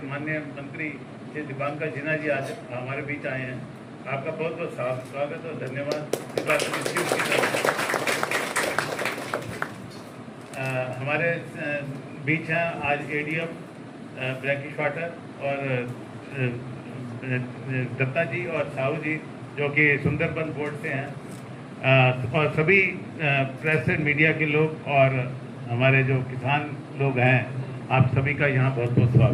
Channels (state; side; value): identical; both; correlation 1.00